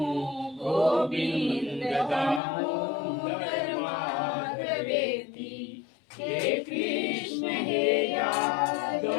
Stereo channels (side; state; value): right; drops out; at 2.4 s